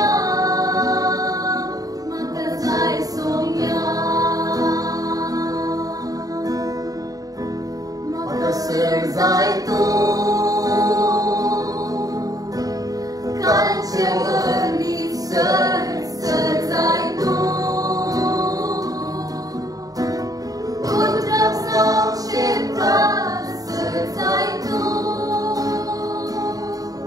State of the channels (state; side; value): late; left; 0.18 ms